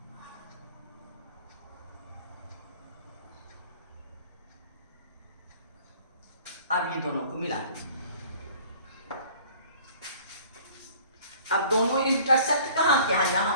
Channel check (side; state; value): both; inverted; correlation -0.51